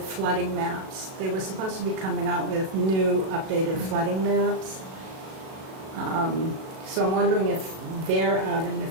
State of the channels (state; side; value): late; left; 37 ms